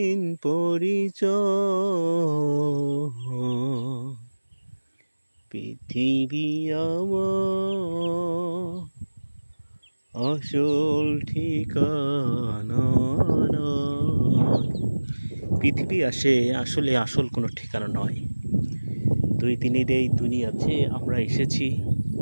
পরিচয়। পৃথিবী আমার আসল ঠিকানা নয়। পৃথিবী আসলে আসল কোনো ঠিকানা নয়। দুই দিনের এই দুনিয়াতে আমরা এসেছি,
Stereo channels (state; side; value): inverted; both; correlation -1.00